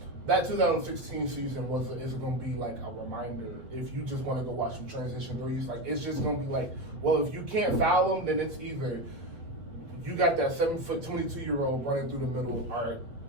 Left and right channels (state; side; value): late; left; 8.2 ms